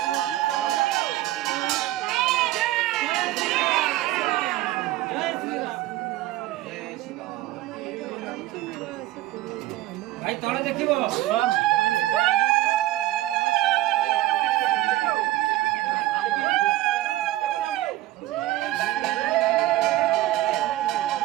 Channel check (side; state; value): left; quieter; 16.1 dB